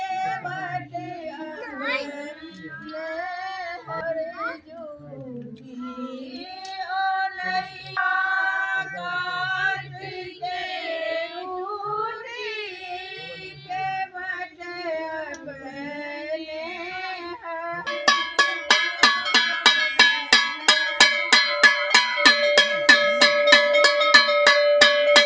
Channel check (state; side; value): identical; both; correlation 1.00